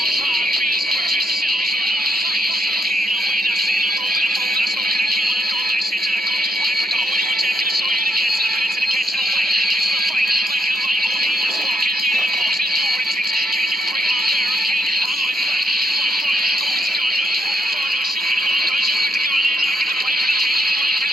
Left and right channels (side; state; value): both; normal; correlation 0.78